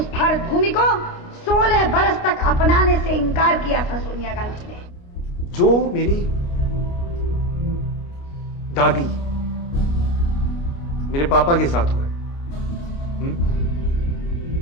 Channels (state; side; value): late; right; 29 ms